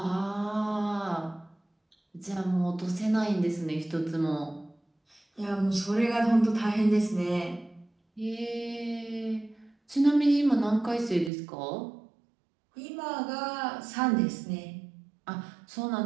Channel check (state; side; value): drops out; left; at 11.3 s